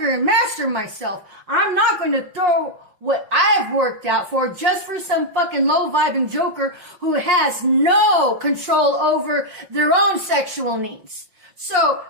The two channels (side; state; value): left; late; 5.7 ms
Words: and master myself. I'm not going to throw what I've worked out for just for some fucking low-vibing joker who has no control over their own sexual needs. So